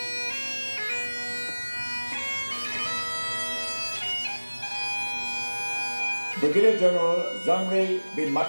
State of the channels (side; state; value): both; inverted; correlation -1.00